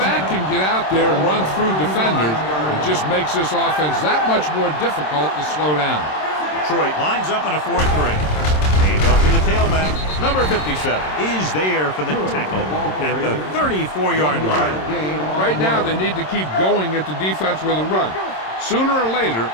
can get out there and run through defenders, it just makes this offense that much more difficult to slow down. Detroit lines up in a 4-3. Hand off to the tailback. Number 57 is there for the tackle at the 34-yard line. Right now, they need to keep going at the defense with a run. Sooner or later,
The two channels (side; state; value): right; late; 26 ms